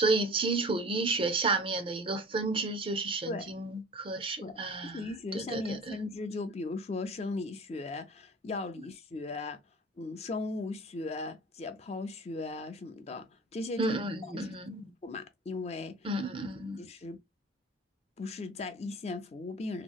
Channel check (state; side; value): normal; both; correlation 0.41